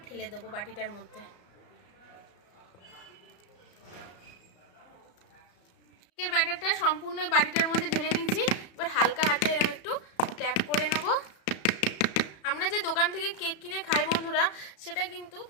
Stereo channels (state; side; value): late; right; 34 ms